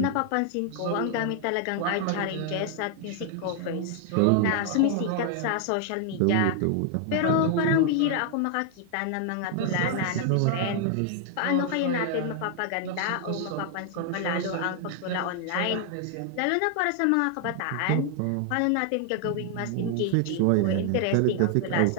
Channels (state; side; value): different; both; correlation 0.00